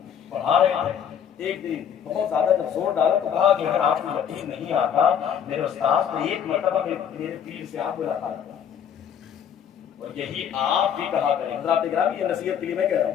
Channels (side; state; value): right; quieter; 8.4 dB